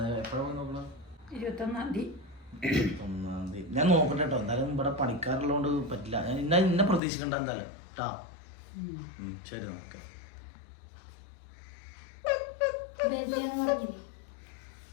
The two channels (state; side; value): drops out; right; at 7.0 s